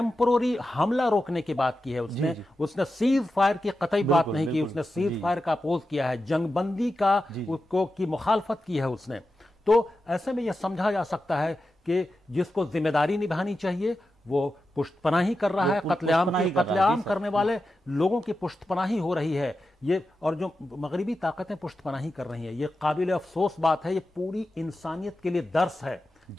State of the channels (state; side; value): normal; both; correlation 0.91